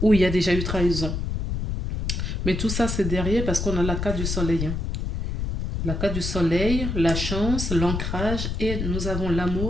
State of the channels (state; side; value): noise; left; rumble, 3 dB below the sound